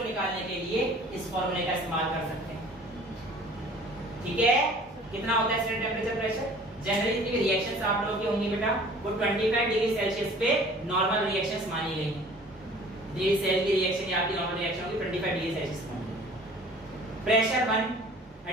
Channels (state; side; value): normal; both; correlation 0.49